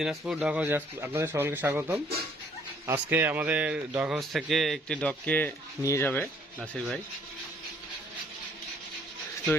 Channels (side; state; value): both; normal; correlation 0.62